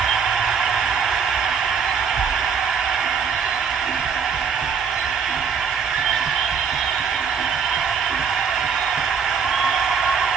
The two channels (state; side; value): quieter; left; 6.4 dB